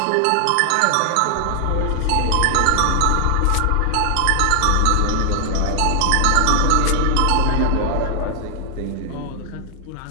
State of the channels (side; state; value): both; different; correlation 0.00